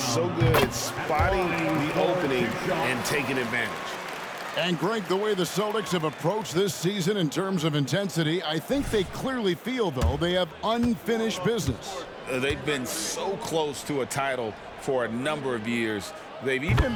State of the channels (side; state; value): both; identical; correlation 1.00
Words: so good at spotting the opening and taking advantage. And Greg, the way the Celtics have approached this season in terms of intensity, I think they clearly feel, though, they have unfinished business. They've been so close to a title for a number of years. They've